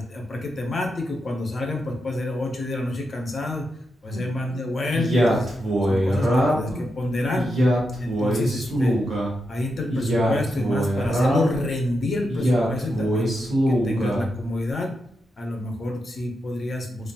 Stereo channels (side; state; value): both; normal; correlation 0.86